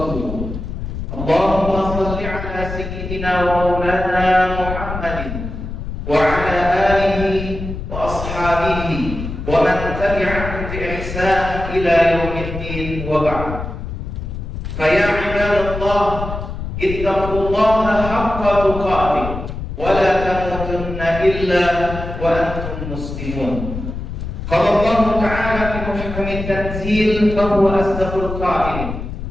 Allahumma shalli 'ala sayyidina wa maulana Muhammadin wa 'ala alihi wa ashabihi wa man tabi'ahum bi ihsan ila yaumiddin wa ba'd. Fa ya 'ibadallah ittaqullaha haqqa tuqatih wa la tamutunna illa wa antum muslimun. Qala Allah ta'ala fi muhkamit tanzil fa huwa asdaqul qa'ilin.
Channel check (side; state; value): left; noise; rumble, 7 dB below the sound